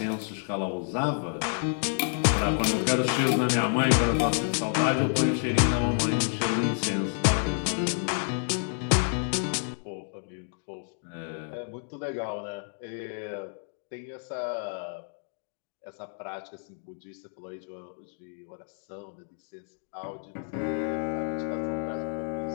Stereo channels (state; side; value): silent; right; 58 dB below the other